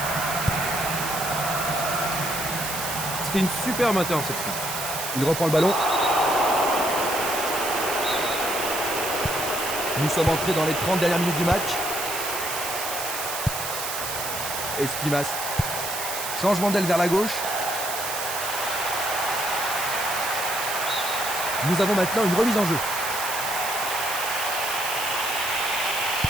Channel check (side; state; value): right; noise; hiss, 5 dB below the sound